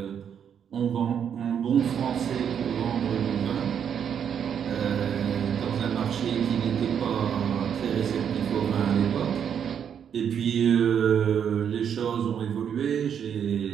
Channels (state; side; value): quieter; left; 8.2 dB